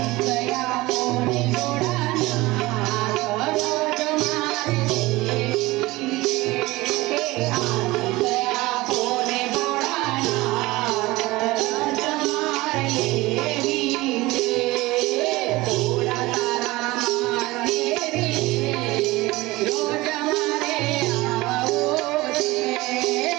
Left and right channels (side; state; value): left; quieter; 20.2 dB